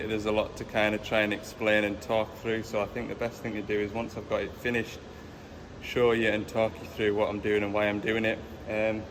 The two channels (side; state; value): both; identical; correlation 1.00